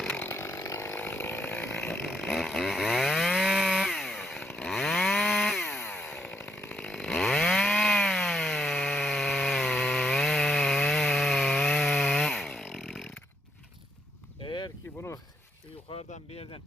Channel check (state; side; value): normal; both; correlation 0.77